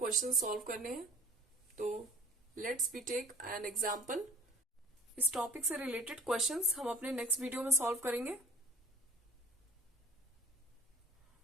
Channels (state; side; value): normal; both; correlation 0.47